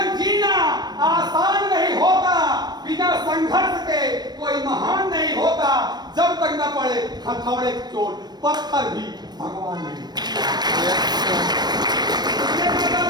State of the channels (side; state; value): left; late; 0.20 ms